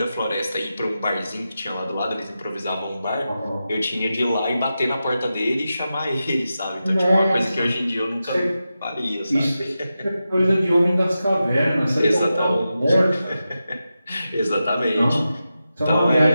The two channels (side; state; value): both; inverted; correlation -0.91